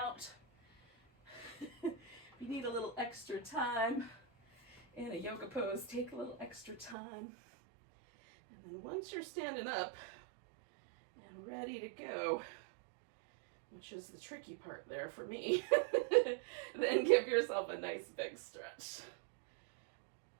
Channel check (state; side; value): drops out; left; at 7.0 s